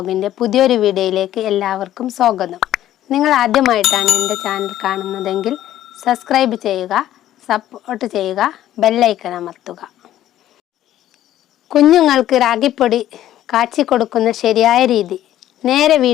പുതിയൊരു വീഡിയോയിലേക്ക് എല്ലാവർക്കും സ്വാഗതം. നിങ്ങൾ ആദ്യമായിട്ടാണ് എൻ്റെ ചാനൽ കാണുന്നതെങ്കിൽ സബ്സ്ക്രൈബ് ചെയ്യുക, സപ്പോർട്ട് ചെയ്യുക, ബെല്ലൈക്കൺ അമർത്തുക. കുഞ്ഞുങ്ങൾക്ക് റാഗിപ്പൊടി കാച്ചി കൊടുക്കുന്ന ശരിയായ രീതി. നേരെ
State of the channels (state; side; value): quieter; right; 12.7 dB